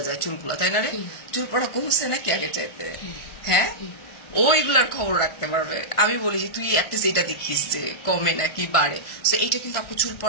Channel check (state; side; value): late; right; 1.5 ms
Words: যায় চুলগুলা, তাই না রে? চুল পড়া কমছে নাকি আগে চাইতে? হ্যাঁ, ও এগুলার খবর রাখতে পারবে। আমি বলি যে তুই অ্যাটলিস্ট এটা দেখিস যে কমে নাকি বাড়ে। সো এটা কিন্তু আপু চুল